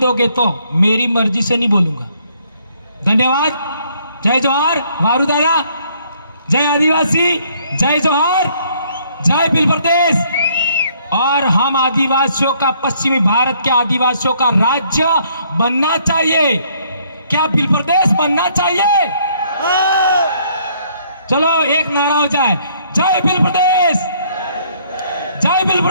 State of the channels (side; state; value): both; inverted; correlation -0.66